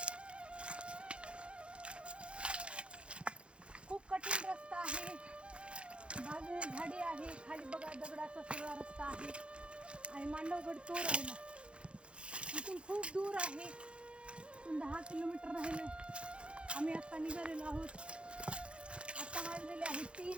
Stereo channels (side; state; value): left; late; 0.058 ms